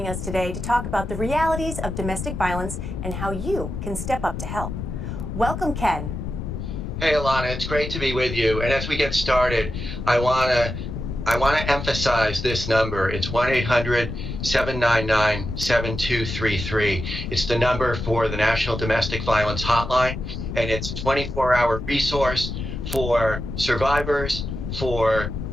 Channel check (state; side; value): noise; left; rumble, 6 dB below the sound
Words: us today to talk about the realities of domestic violence and how you can step up to help. Welcome, Ken. Hey, Alana, it's great to be with you. And as we get started, I want to I want to emphasize this number. It's 1-800-799-7233. It's the number for the National Domestic Violence Hotline, and it's a 24-hour resource for survivors, for